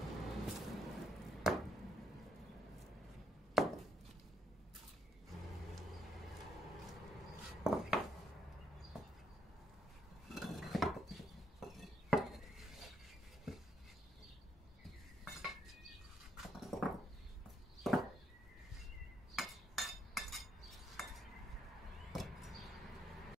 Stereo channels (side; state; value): both; normal; correlation 0.73